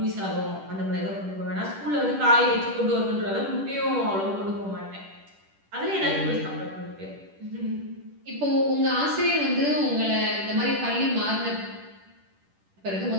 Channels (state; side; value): late; left; 10 ms